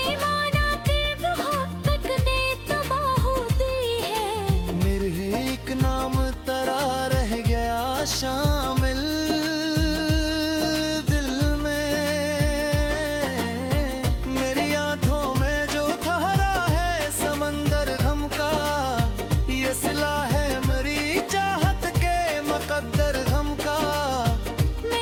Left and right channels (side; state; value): both; identical; correlation 1.00